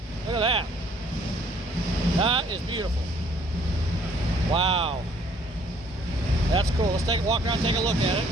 Look at that. That is beautiful. Wow. That's cool. Let's take a walk around and take a look at it.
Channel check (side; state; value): both; normal; correlation 0.61